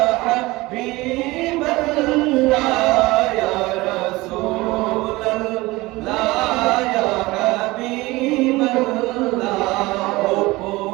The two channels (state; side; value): quieter; left; 20.8 dB